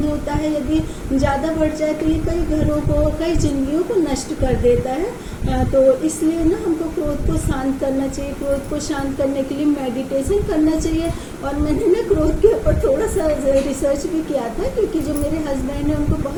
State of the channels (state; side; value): identical; both; correlation 1.00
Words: होता है यदि ज़्यादा बढ़ जाए तो ये कई घरों को, कई जिंदगियों को नष्ट कर देता है। तो इसलिए ना हमको क्रोध को शांत करना चाहिए। क्रोध को शांत करने के लिए मेडिटेशन करना चाहिए। और मैंने ना क्रोध के ऊपर थोड़ा सा रिसर्च भी किया था, क्योंकि जो मेरे हस्बैंड हैं उनको